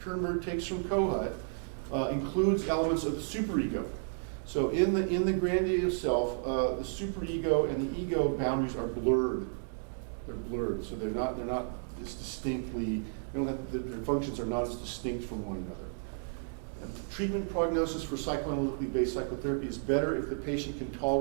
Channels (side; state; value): left; silent; digital silence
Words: takes from Kohut, includes elements of the superego. So in the grandiose self, the superego and the ego boundaries are blurred. They're blurred, so they're not as distinctly. Their functions are not as distinct from one another. And treatment prognosis for psychoanalytically based psychotherapy is better if the patient can